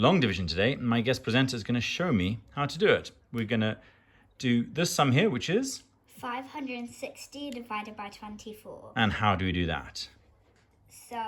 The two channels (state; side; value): identical; both; correlation 1.00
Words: division today, and my guest presenter is going to show me how to do it. We're going to do this sum here, which is 560 divided by 24. And how do we do that? So